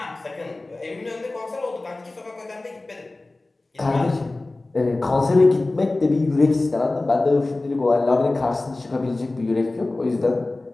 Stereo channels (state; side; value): quieter; right; 3.0 dB